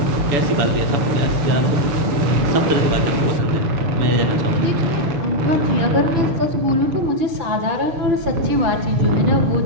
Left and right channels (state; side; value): late; left; 6.5 ms